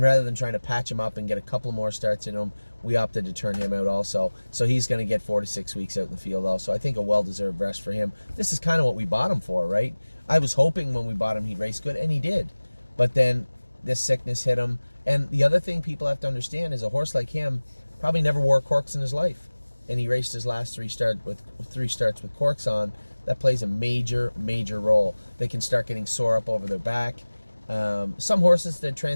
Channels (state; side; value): inverted; both; correlation -1.00